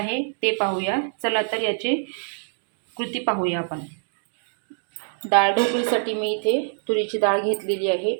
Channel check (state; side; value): silent; left; digital silence